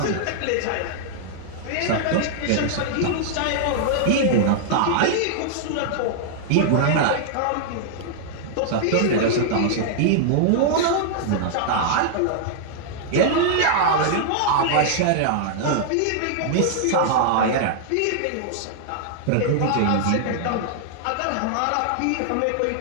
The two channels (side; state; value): both; different; correlation -0.01